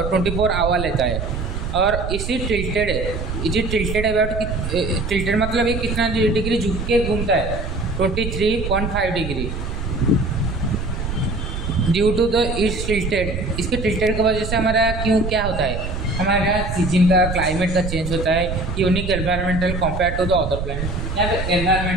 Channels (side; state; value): right; noise; rumble, 5 dB below the sound